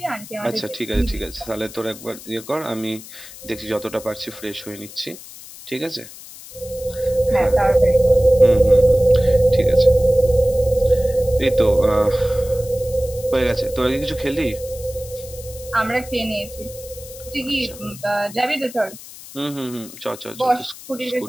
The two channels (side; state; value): left; noise; hiss, 16 dB below the sound